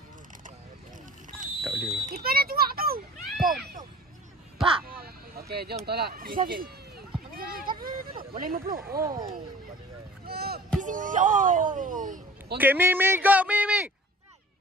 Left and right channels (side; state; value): both; normal; correlation 0.45